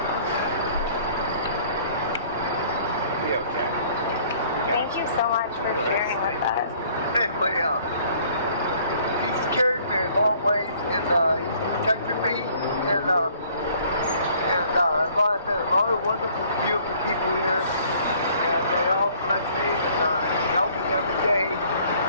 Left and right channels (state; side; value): inverted; both; correlation -0.57